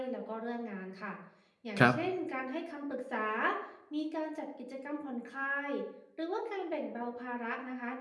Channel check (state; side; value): identical; both; correlation 1.00